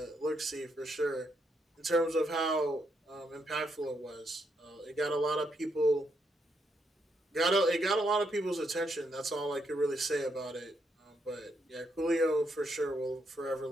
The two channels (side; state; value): both; normal; correlation 0.78